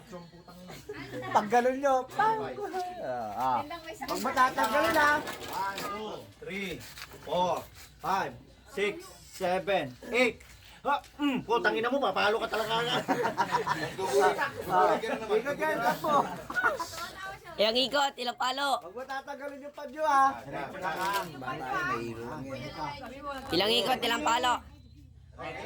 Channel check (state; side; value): identical; both; correlation 1.00